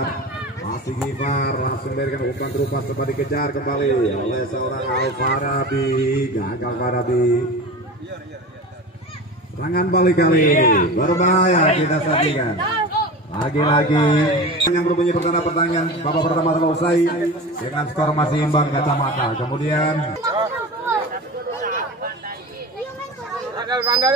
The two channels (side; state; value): both; normal; correlation 0.31